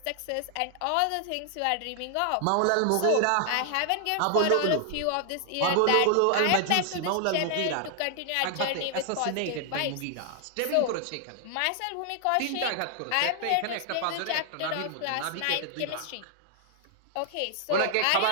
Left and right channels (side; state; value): both; different; correlation 0.00